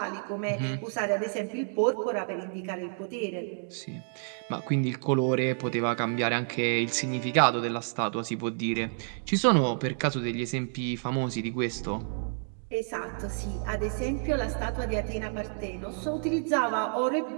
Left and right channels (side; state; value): left; silent; 58 dB below the other